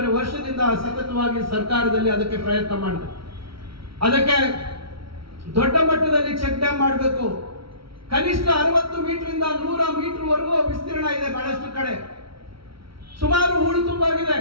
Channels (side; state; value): left; late; 0.75 ms